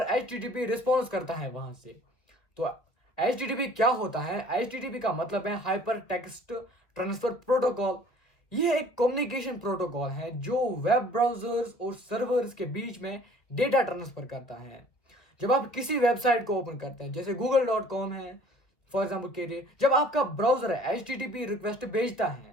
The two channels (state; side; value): late; right; 2.1 ms